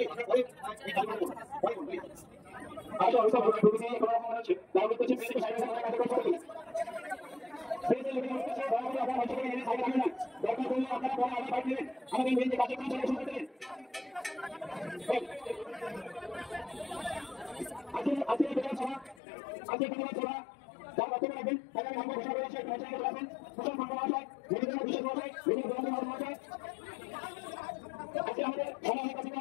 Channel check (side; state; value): right; drops out; at 19.2 s